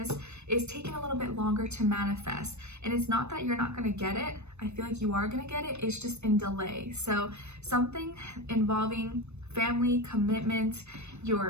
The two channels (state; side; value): late; left; 0.81 ms